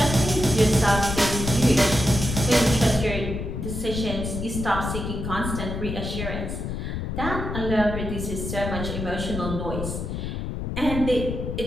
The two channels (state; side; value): noise; left; rumble, 4 dB below the sound